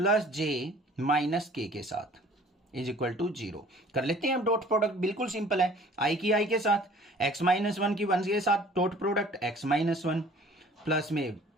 j minus k के साथ। Is equal to 0। कर लेते हैं हम डॉट प्रोडक्ट, बिल्कुल सिंपल है। आई की आई के साथ, x माइनस वन की वन के साथ dot product x minus one, plus में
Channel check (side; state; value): both; normal; correlation 0.51